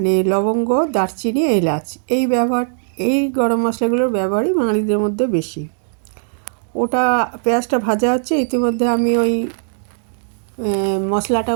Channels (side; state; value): left; silent; digital silence